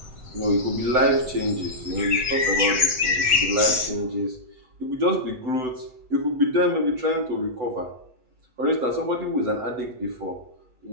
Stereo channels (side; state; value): left; late; 7.7 ms